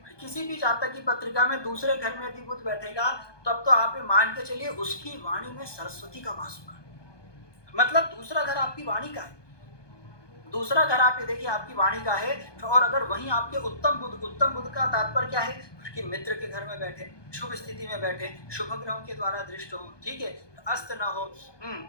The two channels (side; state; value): right; late; 1.2 ms